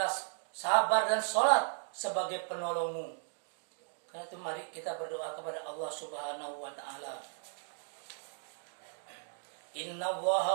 sabar dan salat sebagai penolongmu. Karena itu mari kita berdoa kepada Allah Subhanahu wa Ta'ala. Inna Allaha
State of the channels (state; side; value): silent; left; 54 dB below the other